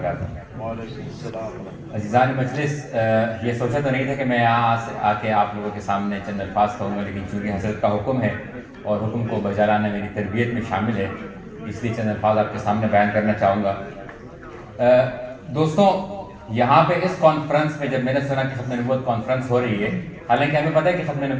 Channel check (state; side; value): identical; both; correlation 1.00